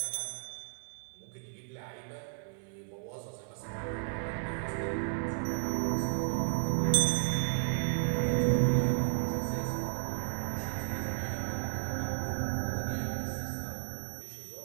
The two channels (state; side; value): silent; left; 55 dB below the other